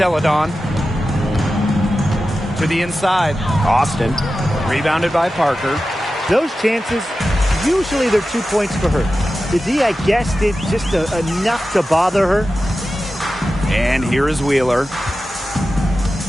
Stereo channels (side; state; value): both; normal; correlation 0.93